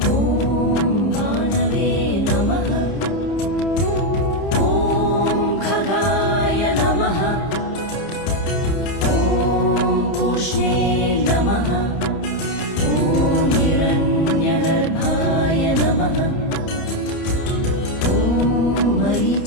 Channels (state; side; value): late; right; 30 ms